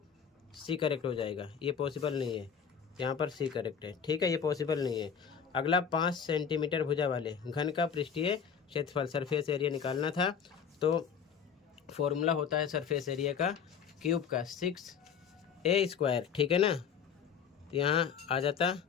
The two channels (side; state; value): right; quieter; 7.1 dB